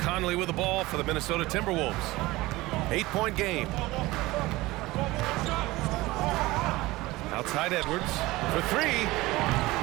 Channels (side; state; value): left; quieter; 19.8 dB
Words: with the ball for the Minnesota Timberwolves. 8-point game. Outside Edwards for three.